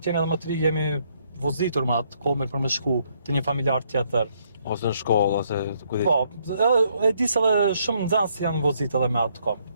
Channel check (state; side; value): inverted; both; correlation -0.70